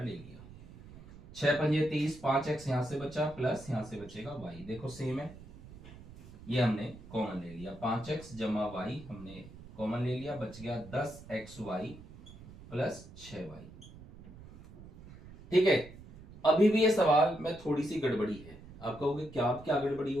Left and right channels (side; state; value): right; noise; rumble, 18 dB below the sound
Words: ले लिया। 6 पंजे 30, 5x यहां से बचा, प्लस यहां से बचेगा y, देखो सेम है, ये हमने कॉमन ले लिया। 5x जमा y हमने कॉमन ले लिया, बच गया 10xy प्लस 6y। ठीक है, अभी भी ये सवाल में थोड़ी सी गड़बड़ी है। आप कहोगे क्या, अब क्या गड़बड़ी